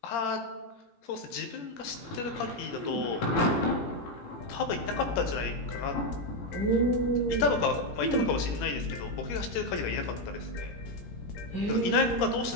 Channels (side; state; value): right; late; 17 ms